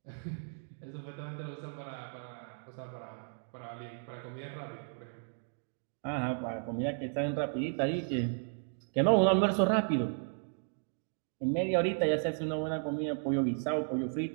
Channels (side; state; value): left; silent; 55 dB below the other